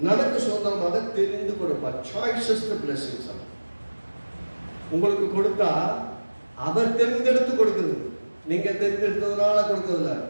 நமக்கு சுதந்திரமாக தெரிந்து கொடுப்பார். சாய்ஸஸ் தி பிளெஸிங்ஸ். உங்களுக்கு கொடுத்தா அவர் தெரிந்தெடுத்து கொடுக்குது, நீங்க தெரிந்தெடுத்ததுனால கொடுக்கறதில்ல.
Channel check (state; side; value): inverted; both; correlation -1.00